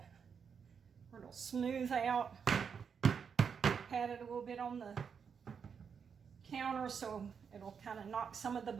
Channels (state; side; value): quieter; left; 6.6 dB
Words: where it'll smooth out. Pat it a little bit on the counter so it'll kind of knock some of the